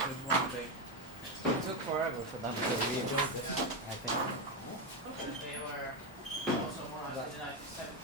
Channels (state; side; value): normal; both; correlation 0.09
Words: one big. It took forever for them to rebuild it, I think. They were also more in the